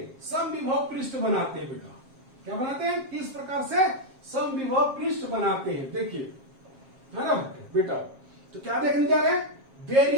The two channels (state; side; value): late; left; 7.5 ms